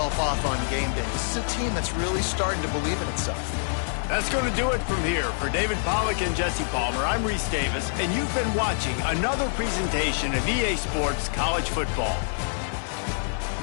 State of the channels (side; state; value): right; silent; 56 dB below the other